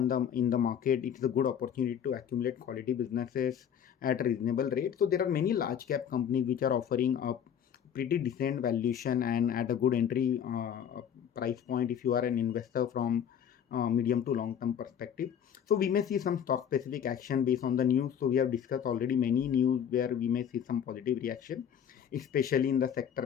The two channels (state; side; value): quieter; right; 8.7 dB